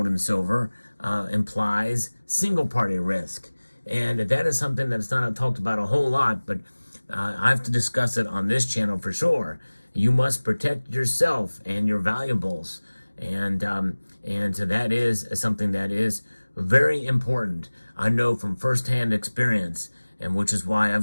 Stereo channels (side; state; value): both; inverted; correlation -1.00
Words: and silver implies single party risk. And that is something that's not talked about a whole lot, but I have to discuss it on this channel for sure. You must protect yourself and your valuables. And so that is something that is very important. I know from firsthand experience, and which is why